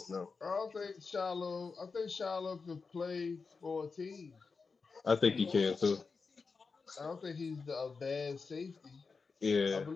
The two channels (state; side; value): quieter; right; 4.7 dB